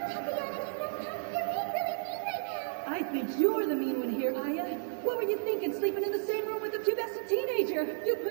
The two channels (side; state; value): left; silent; digital silence